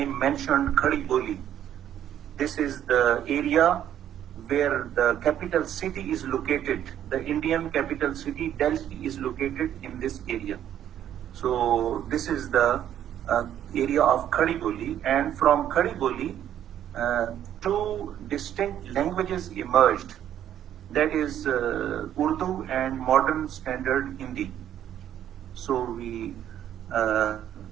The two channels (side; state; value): left; quieter; 10.7 dB